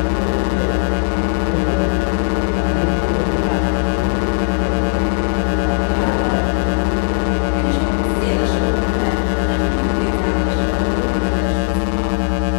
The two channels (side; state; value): right; silent; digital silence